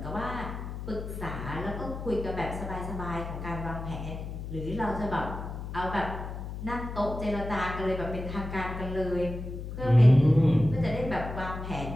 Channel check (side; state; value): left; noise; hum, 7 dB below the sound